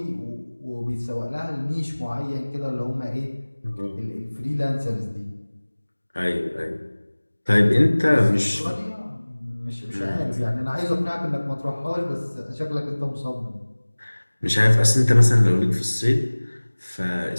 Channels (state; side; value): inverted; both; correlation -1.00